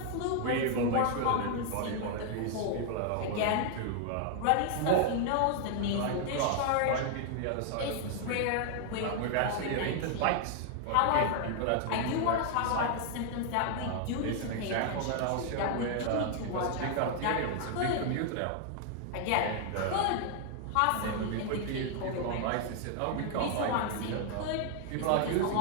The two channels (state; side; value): different; both; correlation 0.00